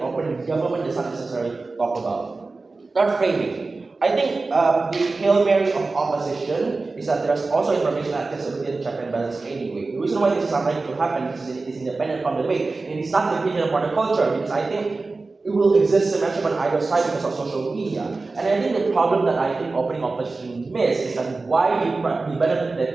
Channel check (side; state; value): left; quieter; 3.7 dB